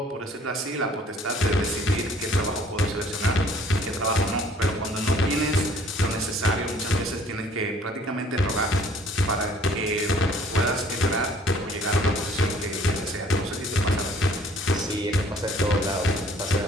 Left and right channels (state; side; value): normal; both; correlation 0.57